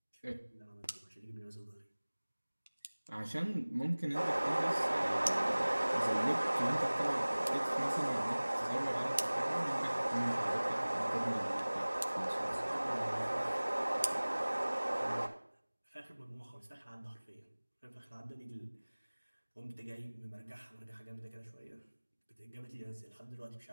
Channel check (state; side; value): inverted; both; correlation -1.00